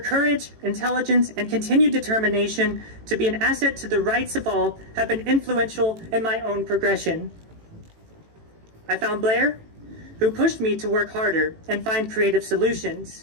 intelligence, and continued determination to be an asset to the rights of all have been influential in my own progression. I found Blair, who pushed me to work harder and find creative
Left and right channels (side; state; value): left; late; 18 ms